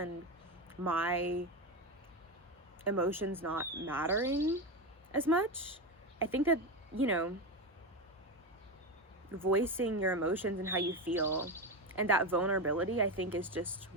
my emotions not mattering as much. I think that, you know, voicing your emotions and how you feel and that vulnerability, I think, is just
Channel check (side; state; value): both; normal; correlation 0.17